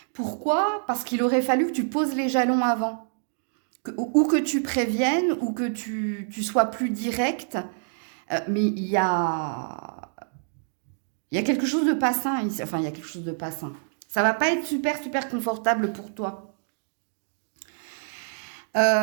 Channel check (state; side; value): silent; left; digital silence